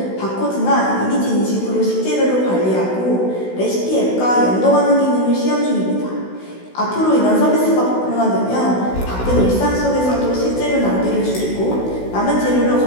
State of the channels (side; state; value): right; late; 16 ms